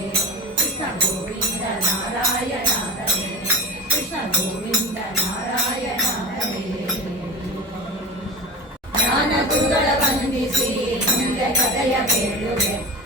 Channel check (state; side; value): normal; both; correlation 0.30